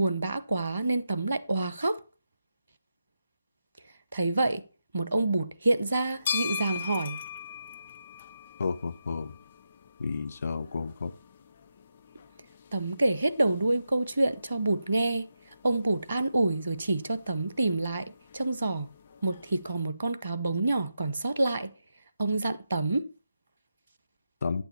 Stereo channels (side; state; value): both; inverted; correlation -0.87